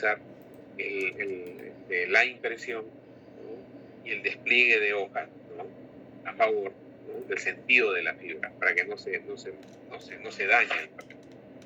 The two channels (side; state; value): both; identical; correlation 1.00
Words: la impresión, ¿no?, y el despliegue de hojas, ¿no?, a favor, ¿no?, del sentido de la fibra, para que no se dañe el papel.